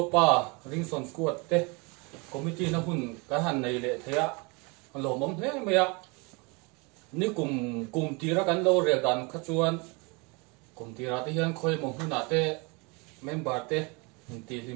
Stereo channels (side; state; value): left; quieter; 29.3 dB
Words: ringson squad te. Committee na hun kahan nei le thea. Lo mom he maya. Ni kum tira kan lo re dan khachuan. Kum tira te hian khoi mo huna te member te ti